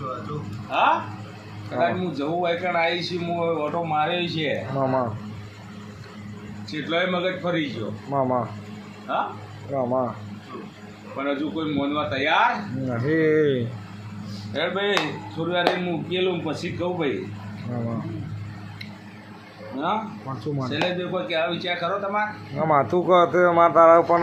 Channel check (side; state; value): both; identical; correlation 1.00